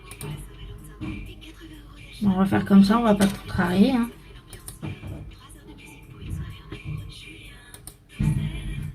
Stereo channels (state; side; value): identical; both; correlation 1.00